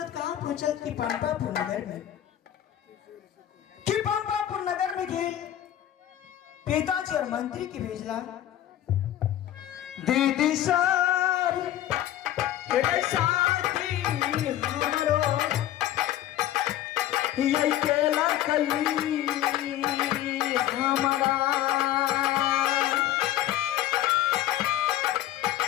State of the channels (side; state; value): right; quieter; 12.7 dB